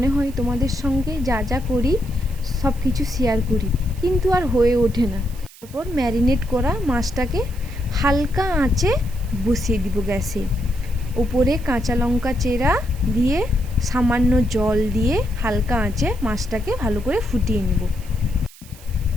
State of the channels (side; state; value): right; noise; hiss, 21 dB below the sound